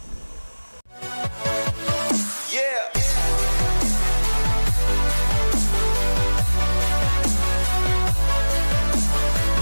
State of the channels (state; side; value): inverted; both; correlation -1.00